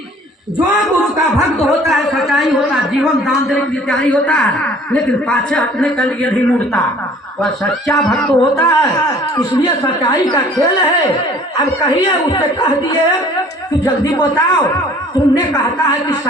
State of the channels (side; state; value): both; normal; correlation 0.52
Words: जो गुरु का भक्त होता है सच्चाई होता है, जीवन दान देने के लिए तैयारी होता है, लेकिन पाछे हटने के लिए नहीं मुड़ता, वह सच्चा भक्त होता है। इसलिए सच्चाई का खेल है। अब कहिए, उससे कह दिए कि जल्दी बताओ, तुमने कहता है कि